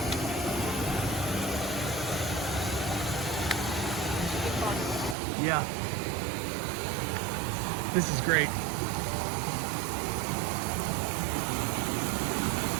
Yeah. This is great.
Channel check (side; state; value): left; drops out; at 5.2 s